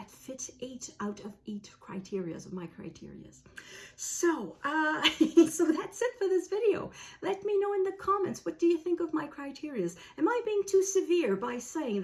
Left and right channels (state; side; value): identical; both; correlation 1.00